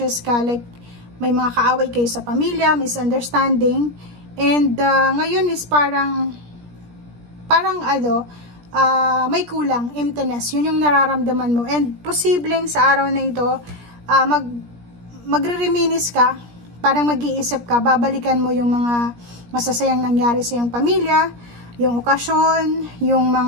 ka, like may mga kaaway kayo sa pamilya, misunderstanding, and ngayon is parang may kulang, emptiness, yun yung nararamdaman mo, and posibleng sa araw na ito, magre-reminisce ka, parang mag-iisip ka, babalikan mo yung mga masasayang nangyari sa iyong pamilya, yung okasyon, yung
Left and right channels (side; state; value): left; late; 17 ms